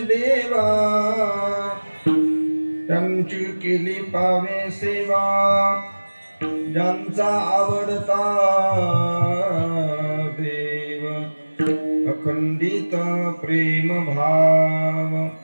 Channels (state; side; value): inverted; both; correlation -1.00